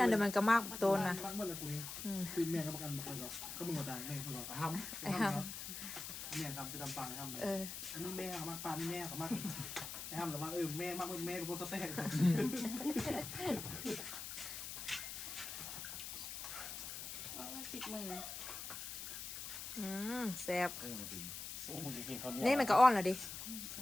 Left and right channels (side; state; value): left; noise; hiss, 7 dB below the sound